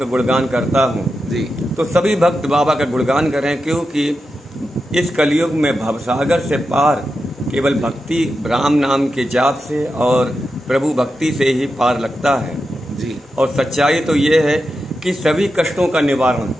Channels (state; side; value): normal; both; correlation 0.89